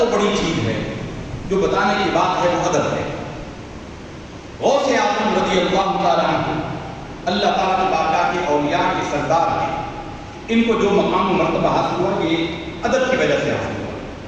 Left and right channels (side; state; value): both; identical; correlation 1.00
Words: بڑی چیز ہے جو بتانے کی بات ہے, وہ ادب ہے. غوث اعظم رضی اللہ تعالیٰ عنہ, اللہ تعالیٰ کی بارگاہ کے اولیاء کے سردار ہیں, ان کو جو مقام و مرتبہ حاصل ہوا یہ ادب کی وجہ سے حاصل ہوا.